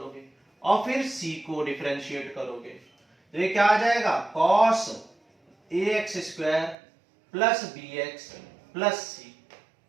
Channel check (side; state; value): left; drops out; at 6.8 s